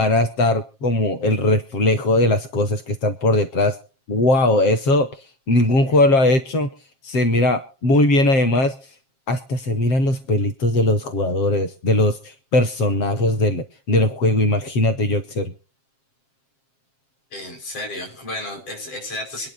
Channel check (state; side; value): late; right; 7.5 ms